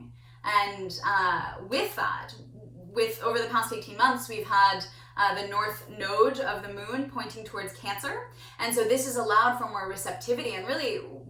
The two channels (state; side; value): identical; both; correlation 1.00